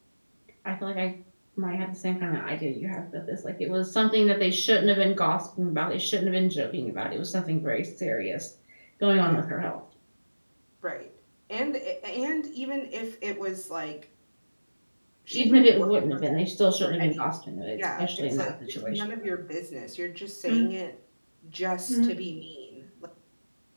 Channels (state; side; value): inverted; both; correlation -1.00